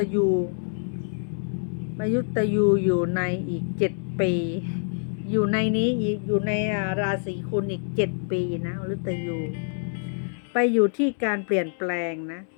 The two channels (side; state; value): right; silent; 61 dB below the other